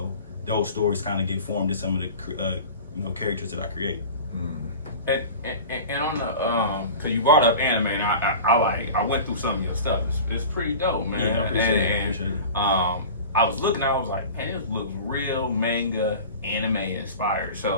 those stories kind of get formed in some of the characters that I create. And on the, cause you brought up anime, and I went through some of your stuff. It's pretty dope, man. Yeah, I appreciate it. I was looking, I was like, hey, this looks real manga, anime inspired.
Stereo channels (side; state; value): both; inverted; correlation -0.36